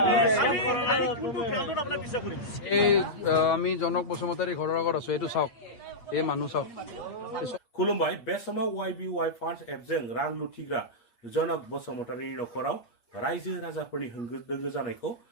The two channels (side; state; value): right; late; 8.5 ms